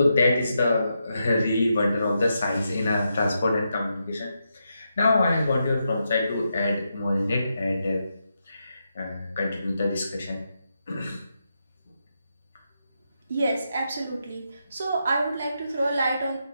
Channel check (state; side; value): inverted; both; correlation -0.84